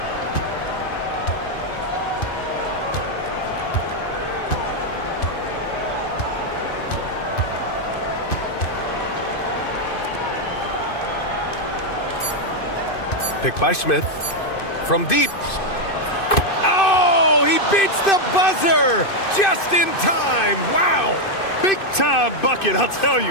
Picked by Smith. From deep. Oh, he beats the buzzer just in time. Wow. Big time bucket, I'll tell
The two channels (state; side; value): late; right; 2.5 ms